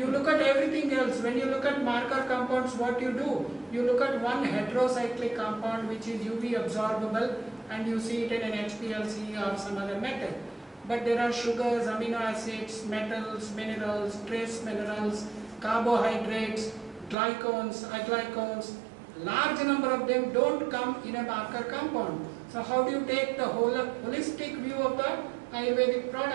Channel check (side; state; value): left; drops out; at 17.2 s